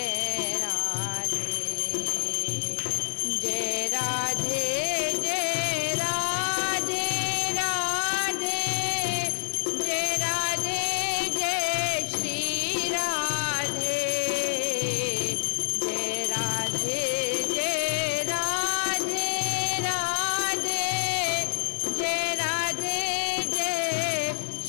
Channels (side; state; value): right; silent; 60 dB below the other